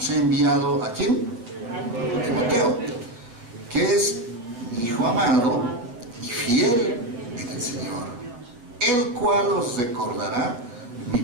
he enviado, ¿a quién? A Timoteo, que es mi hijo amado y fiel en el Señor, el cual os recordará mi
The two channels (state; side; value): late; left; 8.3 ms